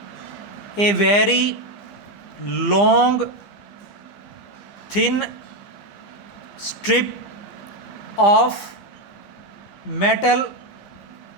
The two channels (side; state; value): right; late; 15 ms